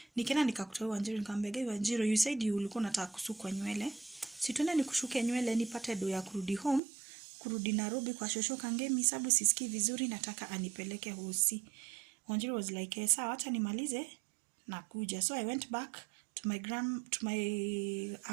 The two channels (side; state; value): left; drops out; at 6.8 s